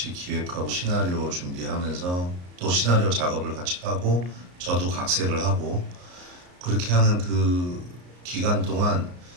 기획하고 시나리오 준비하면서 또 시나리오 작업을 같이 하고 저도 각색을 하고 그렇게 하는 그 기간 동안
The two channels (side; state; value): left; late; 34 ms